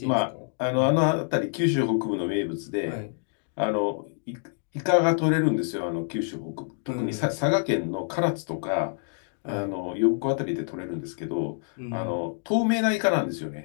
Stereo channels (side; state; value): right; silent; digital silence